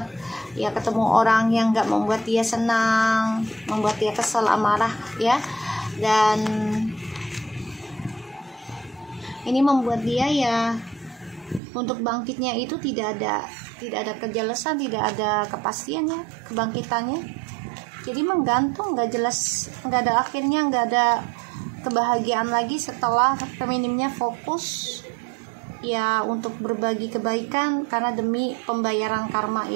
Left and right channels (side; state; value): left; drops out; at 11.6 s